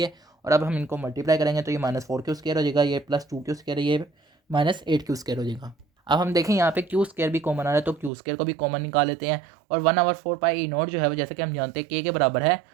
और अब हम इनको मल्टीप्लाई करेंगे तो ये -4Q² हो जाएगा, ये +2Q², ये -8Q² हो जाएगा। अब हम देखें यहाँ पे Q² भी कॉमन आ रहा है तो Q² को भी कॉमन निकाल लेते हैं, और 1/4πE0 जो है वो जैसे कि हम जानते हैं K के बराबर है,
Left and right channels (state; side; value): drops out; left; at 8.1 s